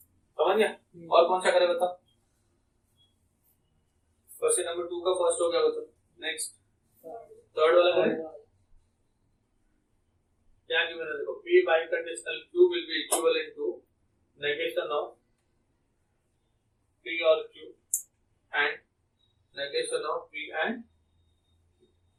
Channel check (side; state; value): both; identical; correlation 1.00